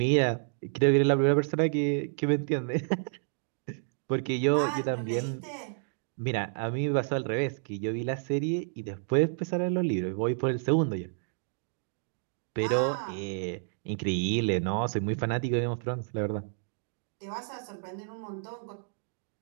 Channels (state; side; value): silent; left; digital silence